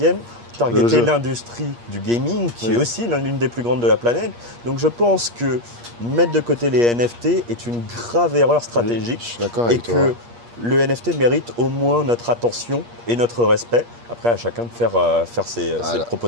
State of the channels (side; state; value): left; late; 8.5 ms